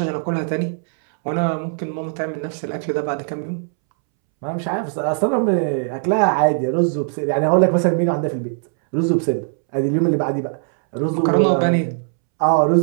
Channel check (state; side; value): silent; left; 66 dB below the other